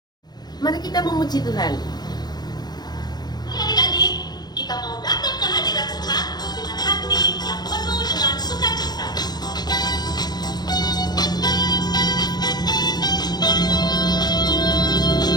Mari kita memuji Tuhan. Adik-adik, kita mau datang ke hadirat Tuhan dengan hati yang penuh dengan sukacita.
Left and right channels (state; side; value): late; right; 0.20 ms